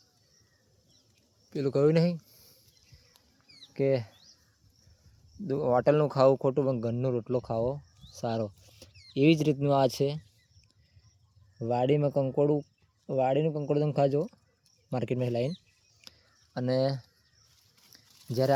પેલું કહ્યું નહીં કે હોટલનું ખાવું ખોટું, પણ ઘરનો રોટલો ખાવો સારો. એવી જ રીતનું આ છે. વાડીનું કંકોડું તમે ખાજો માર્કેટમાં લાવીને. અને જ્યારે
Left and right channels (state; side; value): identical; both; correlation 1.00